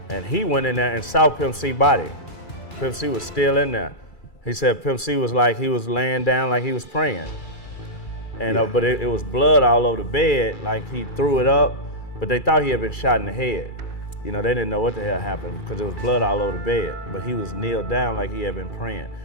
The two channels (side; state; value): right; late; 2.3 ms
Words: And he went in there and saw Pimp C's body. Pimp C was still in there. He said Pimp C was like, he was laying down like he was praying. And but it was blood all over the bed, like he threw it up, but they thought he had been shot in the head. You know, they didn't know what the hell happened because there was blood all over the bed, but he was kneeled down like he had been praying.